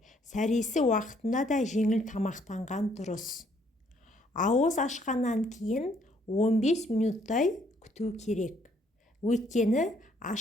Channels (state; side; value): normal; both; correlation 0.67